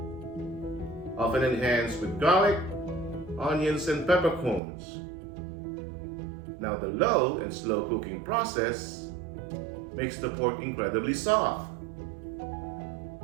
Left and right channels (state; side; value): drops out; left; at 4.6 s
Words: often enhanced with garlic, onions, and peppercorns. Now, the low and slow cooking process makes the pork incredibly soft,